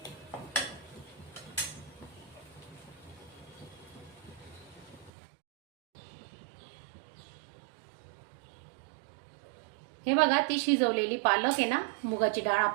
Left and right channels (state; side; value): drops out; left; at 5.1 s